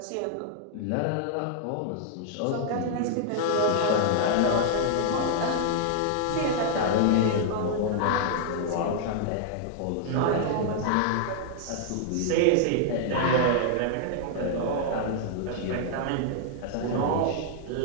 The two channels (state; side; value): different; both; correlation -0.01